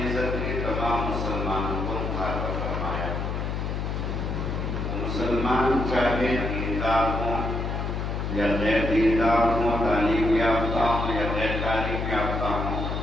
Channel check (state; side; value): noise; left; hum, 2 dB below the sound